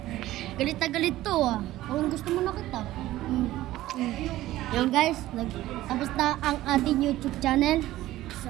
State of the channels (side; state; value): left; quieter; 15.6 dB